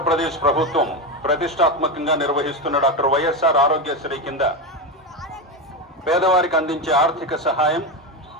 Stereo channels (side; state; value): both; normal; correlation 0.15